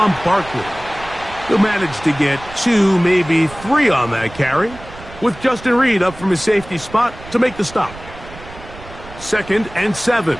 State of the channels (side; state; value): right; noise; rumble, 17 dB below the sound